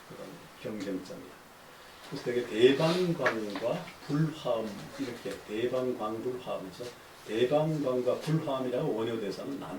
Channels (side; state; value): both; identical; correlation 1.00